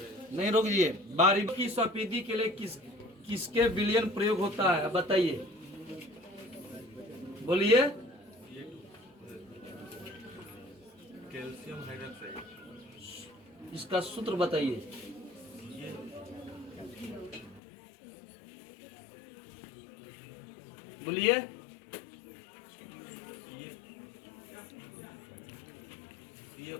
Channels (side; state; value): right; drops out; at 17.6 s